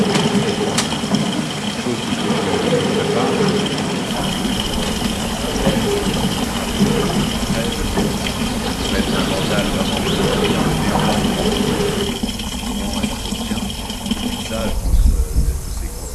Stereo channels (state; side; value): identical; both; correlation 1.00